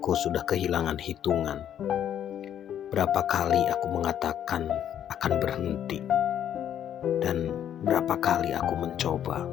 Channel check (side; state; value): right; quieter; 10.0 dB